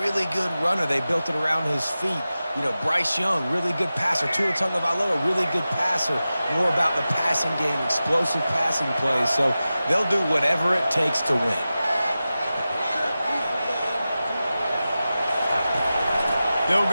really good runner. They built it around his feet. You know, Bryce Young, really good passer. Tua Tagovailoa, really good passer. More about the passing game, explosive passing plays. So they'll do whatever it takes to win. They'll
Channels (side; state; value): both; inverted; correlation -0.94